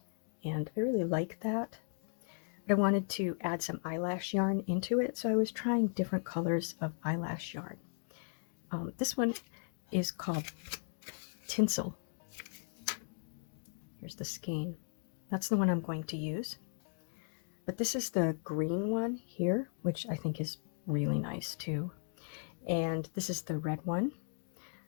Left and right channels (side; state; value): right; silent; digital silence